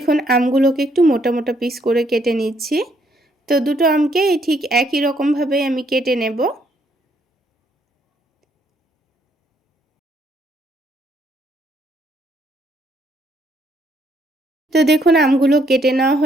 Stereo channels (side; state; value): both; normal; correlation 0.70